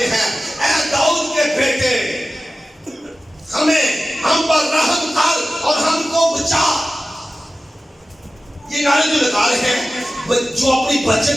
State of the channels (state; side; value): normal; both; correlation 0.95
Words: ہیں اے داؤد کے بیٹے ہم پر رحم کر اور ہم کو بچا. یہ نعرے جو لگا رہے ہیں، جو اپنی بچت